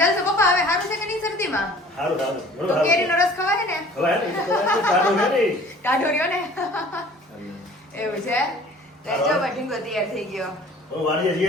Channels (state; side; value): normal; both; correlation 0.49